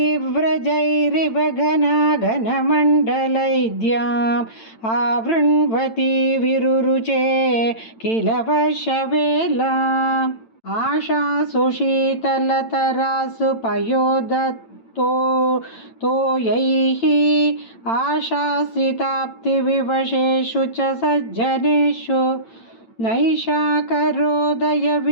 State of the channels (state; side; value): late; right; 8.9 ms